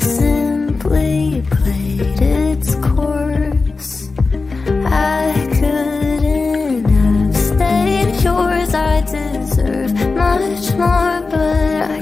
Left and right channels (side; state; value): right; quieter; 4.0 dB